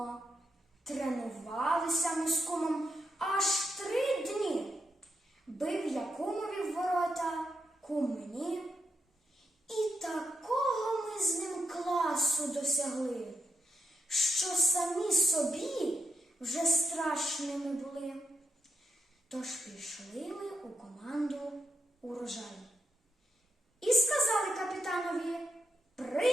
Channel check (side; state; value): both; normal; correlation 0.82